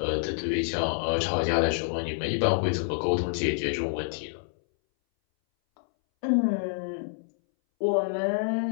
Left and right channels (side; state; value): right; silent; 60 dB below the other